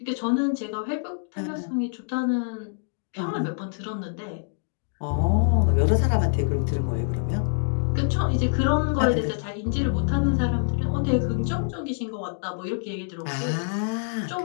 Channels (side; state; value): right; silent; digital silence